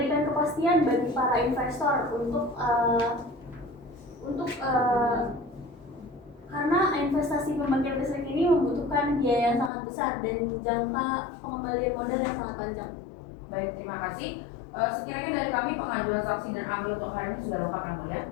kepastian bagi para investor karena investasi pembangkit listrik ini membutuhkan biaya yang sangat besar dan jangka pengembalian modal yang sangat panjang. Baik, terima kasih. Sekiranya dari kami pengajuan saksi dan ahli untuk hari ini sudah lengkap yang mulia.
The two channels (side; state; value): right; drops out; at 9.7 s